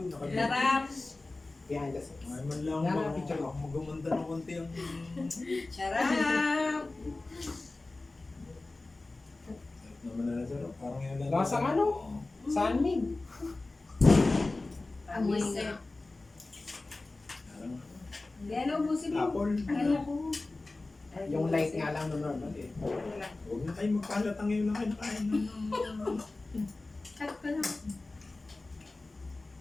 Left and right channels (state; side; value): quieter; right; 3.2 dB